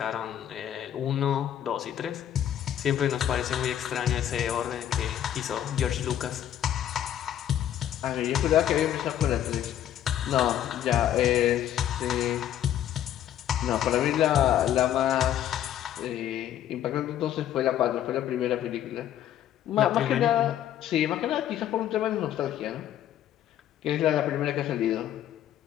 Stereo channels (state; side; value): quieter; right; 11.1 dB